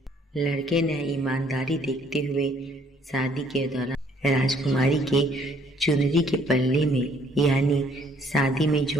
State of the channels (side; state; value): both; normal; correlation 0.63